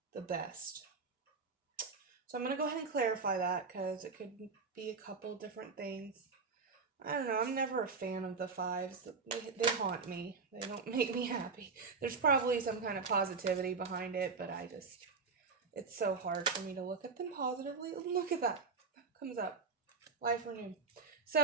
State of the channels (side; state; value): left; quieter; 4.8 dB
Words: the best. So I'm going to go ahead and clarify that because it could be a couple different things. I don't know, I'm never a fan of the fives. They haunt me. They don't make me happy. There's probably some kind of positivity behind it, but it's so hard for me to look at them positively. Look at that. That comes up. Life renewed.